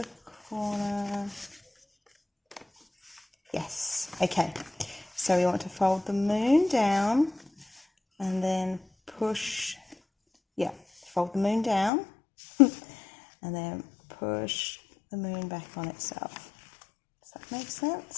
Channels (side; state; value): right; drops out; at 11.9 s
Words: corner. Yes, okay. So we want to fold the moon down and then push, yeah, fold the moon down and then push the moon back on itself. Does that make